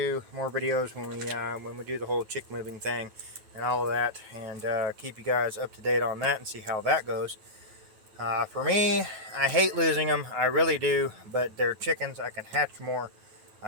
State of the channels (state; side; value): late; left; 9.3 ms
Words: more videos when we do the whole chick moving thing and all of that, and keep you guys up to date on that and see how that goes. For me, I hate losing them. I really do, but they're chickens. I can hatch more.